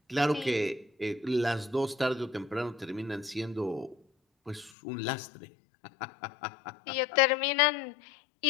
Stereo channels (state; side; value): drops out; right; at 4.7 s